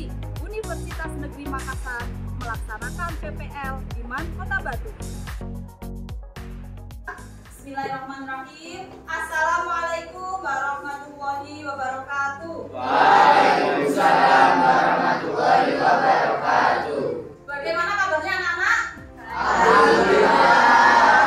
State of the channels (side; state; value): both; identical; correlation 1.00